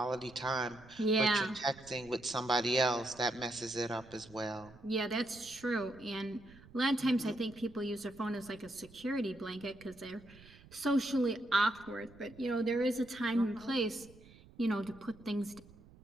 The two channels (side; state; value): right; noise; rumble, 22 dB below the sound